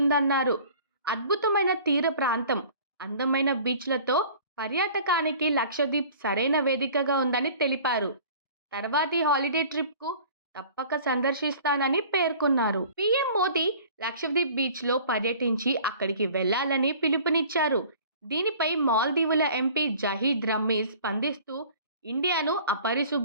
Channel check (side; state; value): both; inverted; correlation -0.47